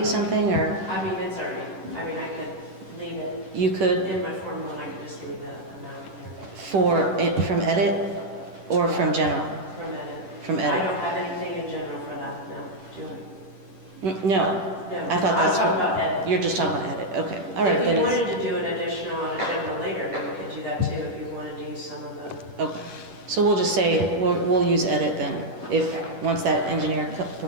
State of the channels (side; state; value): left; late; 10 ms